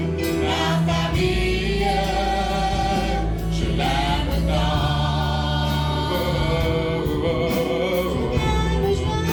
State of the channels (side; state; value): both; identical; correlation 1.00